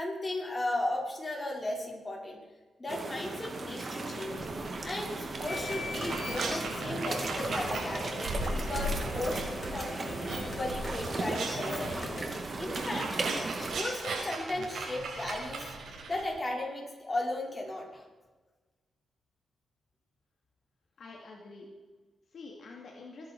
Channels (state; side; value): normal; both; correlation 0.85